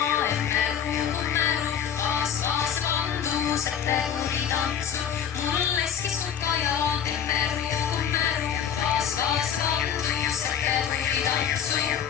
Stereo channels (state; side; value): quieter; right; 8.5 dB